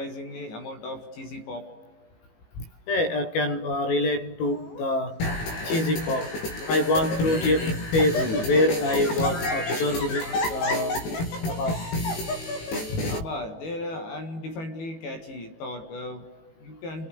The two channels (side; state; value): right; late; 18 ms